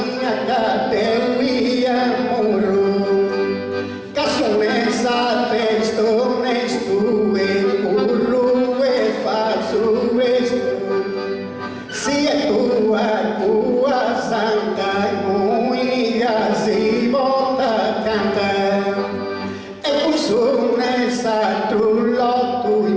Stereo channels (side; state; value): both; identical; correlation 1.00